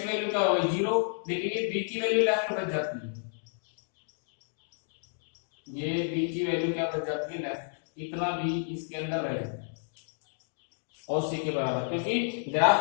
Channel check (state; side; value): silent; right; digital silence